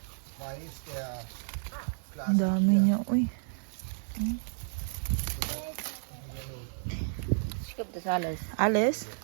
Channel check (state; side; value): silent; left; digital silence